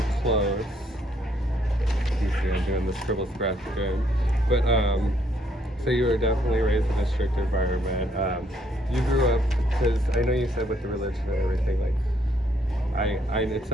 close. You see, I'm doing the scribble scratch again. But, so you were definitely raised in a strict environment. You grew up, because I know you said with the religion and everything, like, it's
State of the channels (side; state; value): both; normal; correlation 0.70